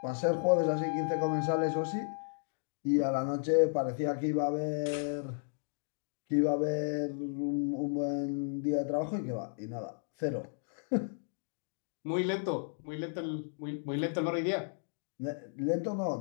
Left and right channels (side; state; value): right; silent; digital silence